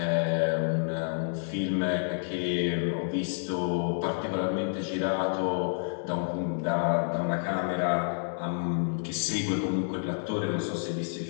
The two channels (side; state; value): right; silent; digital silence